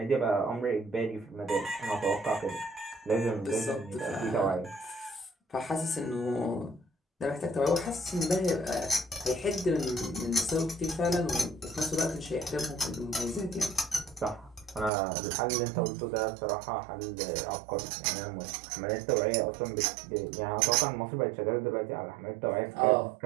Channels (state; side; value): drops out; left; at 14.9 s